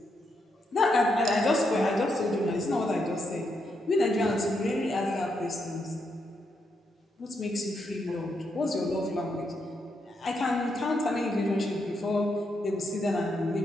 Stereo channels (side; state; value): both; normal; correlation 0.80